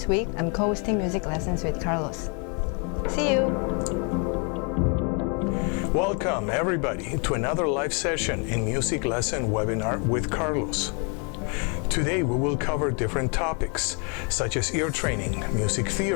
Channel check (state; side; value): quieter; right; 36.5 dB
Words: week I'm co-hosting music lessons with Carlos. See you! Welcome everybody to another live session in music lesson webinar with Carlos. Today we will cover different topics such as ear training, music